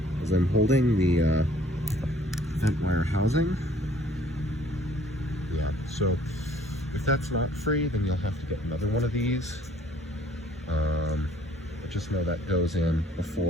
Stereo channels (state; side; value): normal; both; correlation 0.58